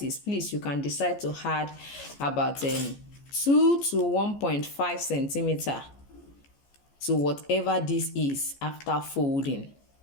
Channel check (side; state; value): right; late; 14 ms